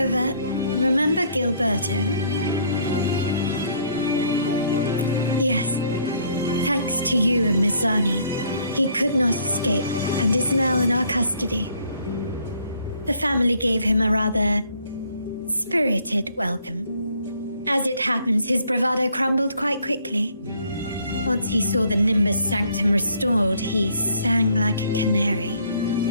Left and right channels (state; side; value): inverted; both; correlation -0.63